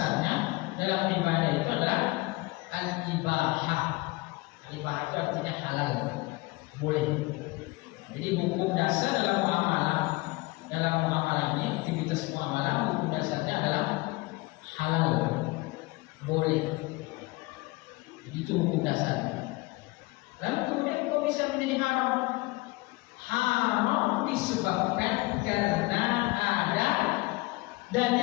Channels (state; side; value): quieter; right; 22.9 dB